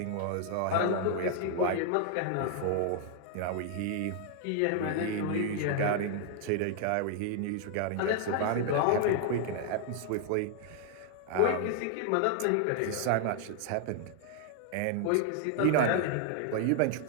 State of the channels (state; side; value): different; both; correlation 0.00